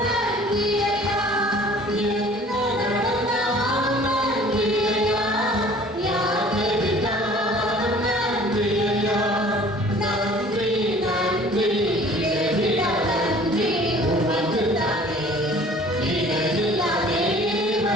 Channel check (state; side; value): normal; both; correlation 0.50